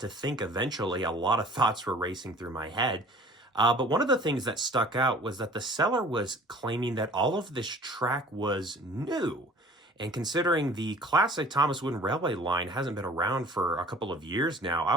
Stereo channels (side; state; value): both; normal; correlation 0.48